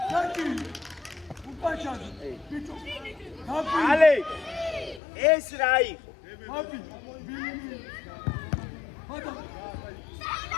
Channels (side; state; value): right; drops out; at 5.0 s